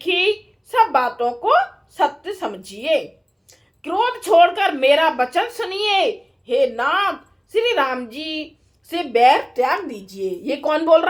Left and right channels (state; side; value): identical; both; correlation 1.00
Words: सब बातों को सत्य समझिए। क्रोध छोड़कर मेरा वचन सुनिए। हे नाथ, श्री राम जी से बैर त्याग दीजिए। ये कौन बोल